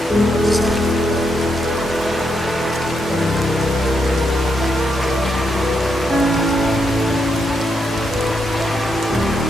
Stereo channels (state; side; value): normal; both; correlation 0.80